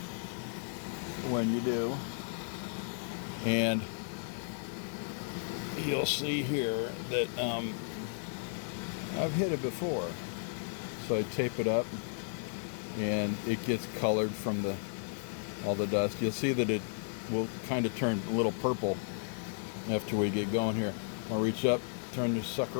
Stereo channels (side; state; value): right; silent; 55 dB below the other